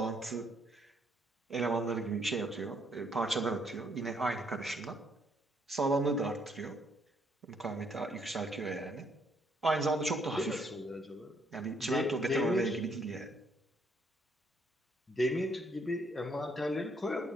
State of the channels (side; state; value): both; normal; correlation 0.70